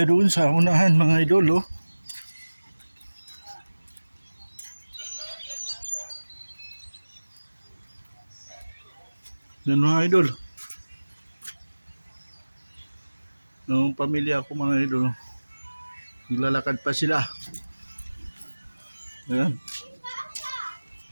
doon sa unahan mga idol, oh. Yan mga idol. Noong pamilya ko mga idol, naglalakad pa sila. Ayan.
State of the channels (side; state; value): both; inverted; correlation -1.00